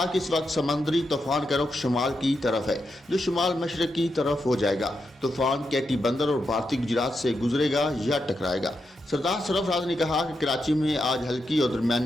कि इस वक्त समुद्री तूफान का रुख शुमाल की तरफ है, जो शुमाल मशरक की तरफ हो जाएगा। तूफान कैटी बंदर और भारतीय गुजरात से गुजरेगा या टकराएगा। सरदार सरफराज ने कहा कि कराची में आज हल्की और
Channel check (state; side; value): normal; both; correlation 0.85